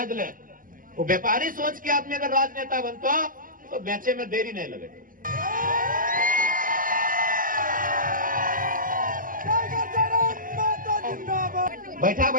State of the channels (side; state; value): left; late; 0.40 ms